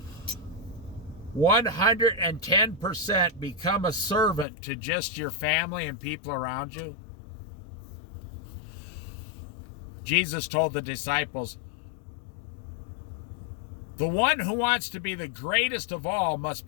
110% become a servant to just your family and people around you. Jesus told the disciples, the one who wants to be the greatest of all must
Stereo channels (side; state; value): right; drops out; at 4.5 s